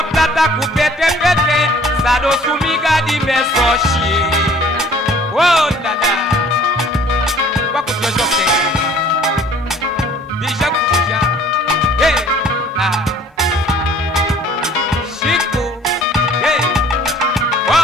plata kupete pete sado sumiga di mesochi oh la la déjà kuja hey ah Chico hey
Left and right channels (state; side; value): normal; both; correlation 0.54